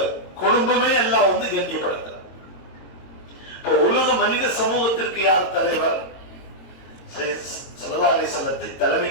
குடும்பமே எல்லாம் வந்து கண்ணியப்படுத்துறாங்க. இப்போ உலக மனித சமூகத்திற்கு யார் தலைவர்? ஸல்லல்லாஹு அலைஹி அலைஹிஸ்ஸலாத்தை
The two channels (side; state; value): right; late; 22 ms